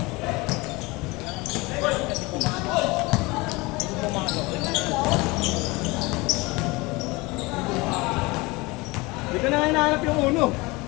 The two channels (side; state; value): right; quieter; 23.8 dB